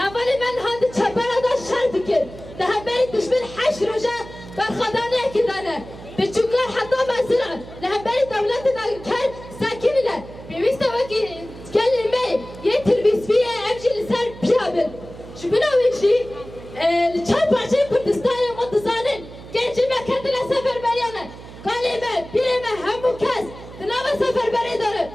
المين هاد شبارة دا شر دكن ده همبري دشمن حش رجا برخدانه كدانه بتشكر حتى مزرعة لهمبري دولة داقر كان ساكنة بيست وقي كلمة يتربيس فيها أمشي لسان بيابل شبنا ويجي الشعب عشان كردستان وانتصارن كان جمع كتلا سفر بريانا كلمة بيرمة همو كاس تناوى سفر بريدارة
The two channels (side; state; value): right; noise; hum, 16 dB below the sound